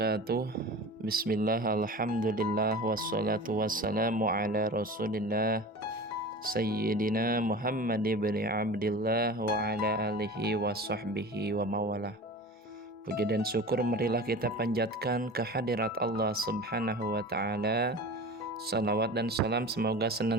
Bismillah, alhamdulillah, wassalatu wassalamu ala rasulillah Sayyidina Muhammad ibn Abdillah wa ala alihi wa sahbihi wa mawalah. Puji dan syukur marilah kita panjatkan kehadirat Allah subhanahu wa ta'ala. Salawat dan salam semoga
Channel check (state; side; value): normal; both; correlation 0.35